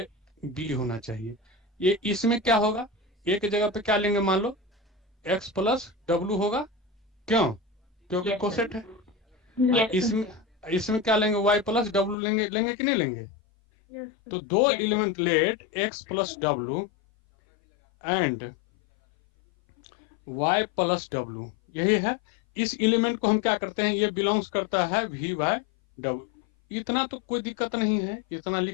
बी होना चाहिए, ये इसमें क्या होगा, ए की जगह पे क्या लेंगे, मान लो एक्स प्लस डब्लू होगा। क्यों? क्योंकि Yes, कोसेट है। Yes, इसमें क्या लेंगे, वाई प्लस डब्लू लेंगे कि नहीं लेंगे? Yes, तो दो Yes, element let X plus W and Y plus W, यही है। इस एलिमेंट को हम क्या करते हैं, ये बिलोंग्स करता है वी वाई डब्लू। इतना तो कोई दिक्कत नहीं है, इतना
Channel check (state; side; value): drops out; right; at 12.2 s